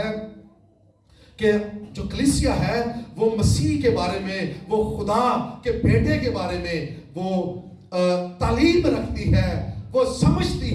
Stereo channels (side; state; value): both; identical; correlation 1.00